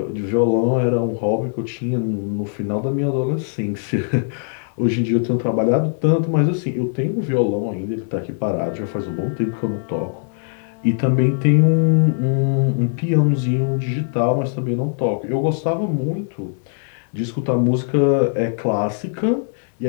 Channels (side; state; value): right; silent; digital silence